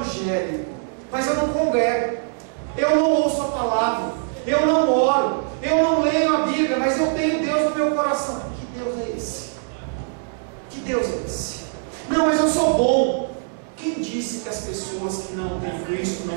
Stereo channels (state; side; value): silent; left; 64 dB below the other